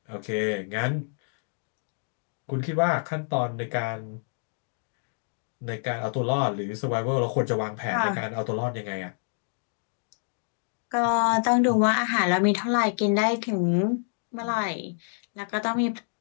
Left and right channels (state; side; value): silent; right; digital silence